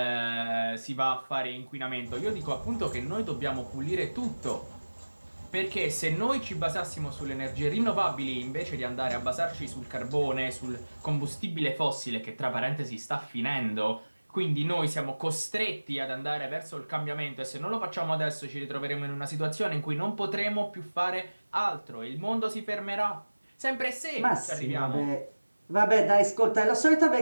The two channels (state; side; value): inverted; both; correlation -1.00